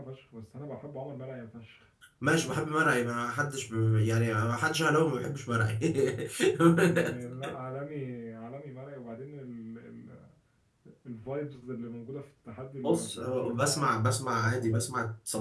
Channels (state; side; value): identical; both; correlation 1.00